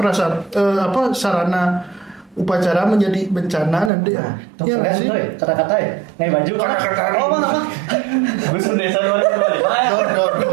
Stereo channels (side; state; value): left; drops out; at 3.9 s